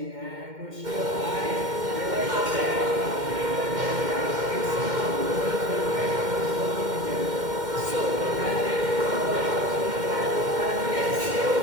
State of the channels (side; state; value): left; late; 2.1 ms